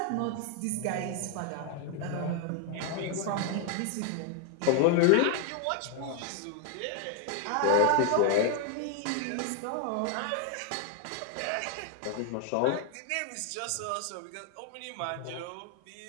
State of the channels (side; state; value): both; different; correlation 0.00